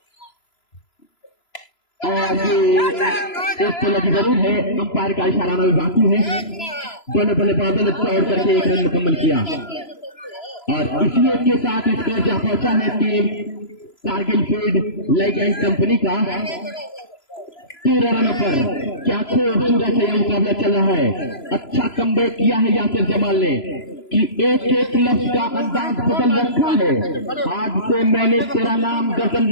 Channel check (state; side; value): late; right; 3.0 ms